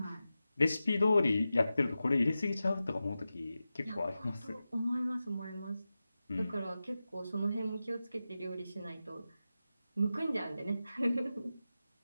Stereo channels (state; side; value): inverted; both; correlation -0.93